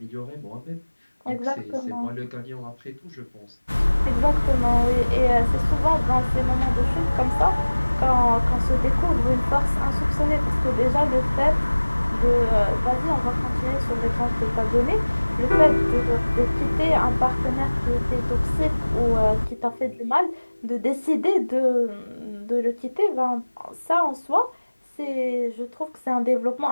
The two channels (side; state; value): both; inverted; correlation -1.00